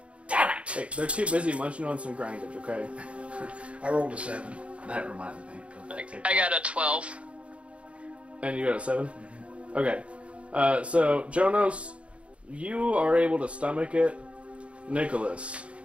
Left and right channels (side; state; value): left; late; 0.062 ms